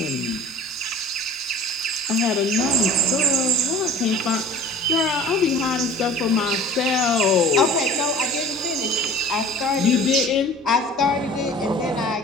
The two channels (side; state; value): both; normal; correlation 0.45